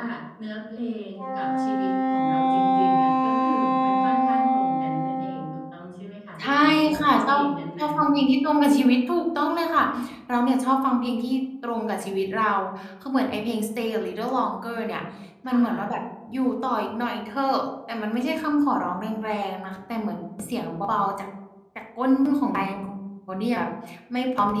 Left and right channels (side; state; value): both; identical; correlation 1.00